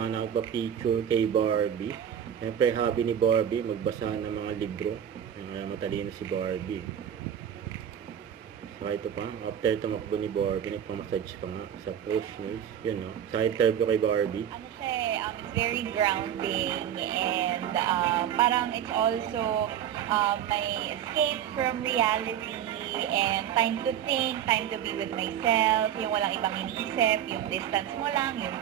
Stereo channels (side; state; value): left; quieter; 9.8 dB